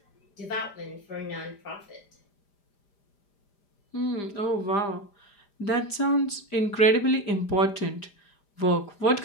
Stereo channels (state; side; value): late; right; 5.0 ms